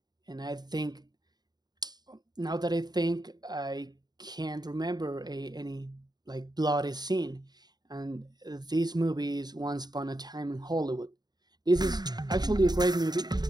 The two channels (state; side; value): late; left; 0.20 ms